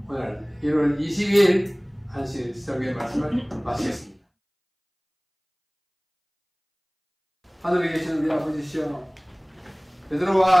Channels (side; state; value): both; identical; correlation 1.00